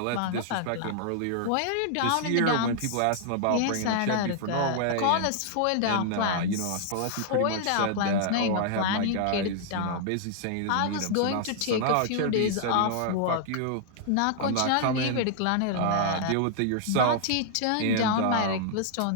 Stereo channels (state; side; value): different; both; correlation -0.01